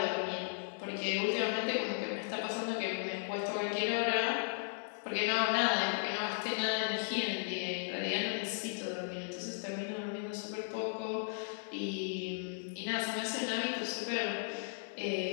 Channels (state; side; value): silent; right; 54 dB below the other